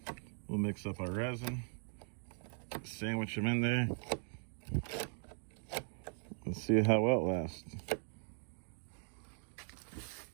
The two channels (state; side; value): silent; left; 51 dB below the other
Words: we'll mix up our resin, sandwich them in there, and see how well it lasts.